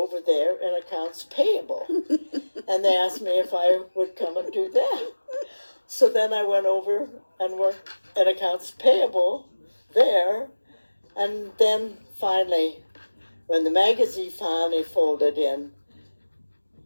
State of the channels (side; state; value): both; inverted; correlation -1.00